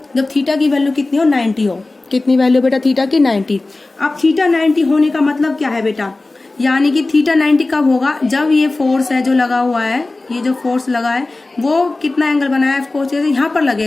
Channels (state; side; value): quieter; right; 3.1 dB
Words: जब थीटा की वैल्यू कितनी हो, 90 हो। कितनी वैल्यू बेटा थीटा की, 90। अब थीटा 90 होने का मतलब क्या है बेटा, यानी कि थीटा 90 कब होगा, जब ये फोर्स है जो लगा हुआ है, ये जो फोर्स लगा है वो कितना एंगल बनाया है, फोर्स यहाँ पर